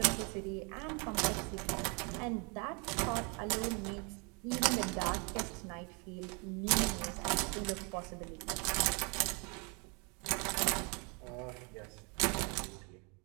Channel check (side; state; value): left; quieter; 32.7 dB